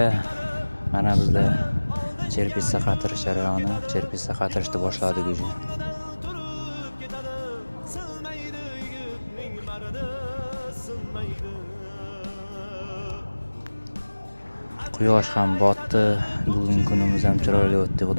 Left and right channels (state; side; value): inverted; both; correlation -1.00